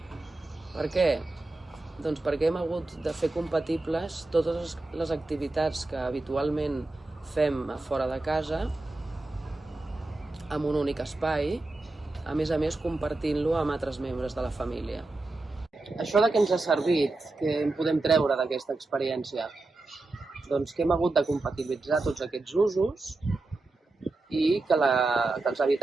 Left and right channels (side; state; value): left; quieter; 3.1 dB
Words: Per què? Doncs perquè hem hagut de fer compatibles totes les activitats que habitualment fem a fora de casa amb un únic espai, a més compartint-lo amb altres membres de la família. Això de què ens ha servit, què en podem treure d'aquesta experiència? Doncs que hem hagut de compatibilitzar tots aquests usos i que els